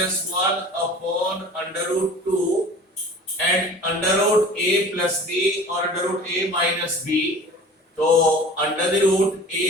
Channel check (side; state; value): both; normal; correlation 0.42